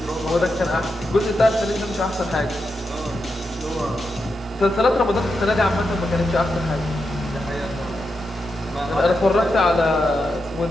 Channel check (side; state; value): both; normal; correlation 0.86